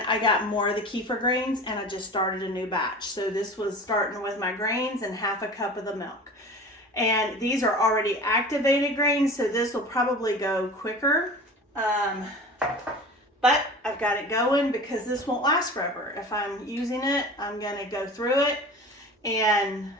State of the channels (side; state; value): both; normal; correlation 0.37